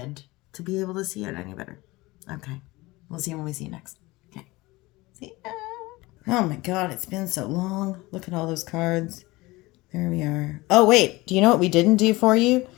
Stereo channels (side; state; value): right; quieter; 21.1 dB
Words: to be able to see it any better. Okay. We'll see you when we see you next. Okay. See ya. Oh my God, it's been so long. Look at all those cards. There we are. Oh, wait. Do you know what we didn't do for you?